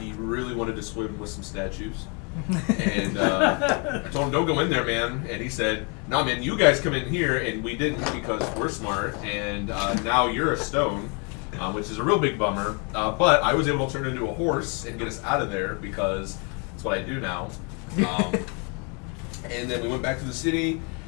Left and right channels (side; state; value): right; quieter; 34.5 dB